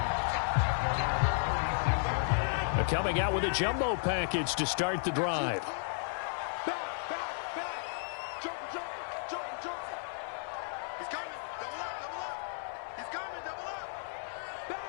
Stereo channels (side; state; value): right; silent; 55 dB below the other